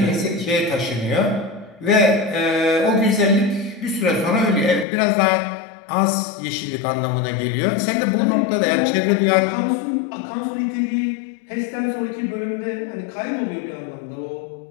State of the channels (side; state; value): right; drops out; at 4.9 s